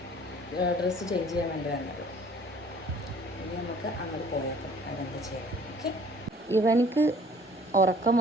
ഡ്രസ്സ് ചേഞ്ച് ചെയ്യാൻ വേണ്ടി വന്നത്. ഇനി നമുക്ക് അങ്ങോട്ട് പോയേക്കാം, അതെന്താ ചെയ്യാം. ഓക്കെ, ഇവനിക്ക് ഉറക്കം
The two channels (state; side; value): normal; both; correlation 0.54